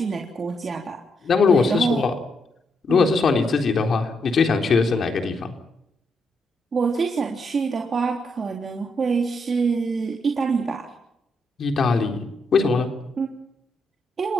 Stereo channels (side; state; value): both; normal; correlation 0.79